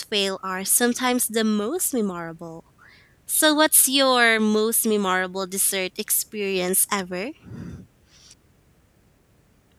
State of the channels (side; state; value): both; identical; correlation 1.00